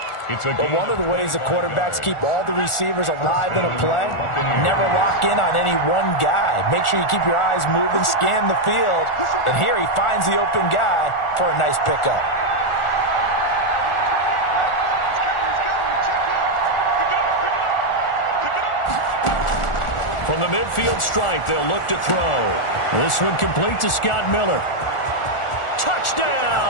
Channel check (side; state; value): right; late; 1.4 ms